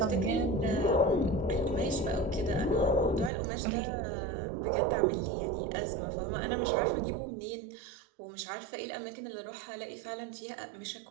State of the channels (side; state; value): left; drops out; at 3.3 s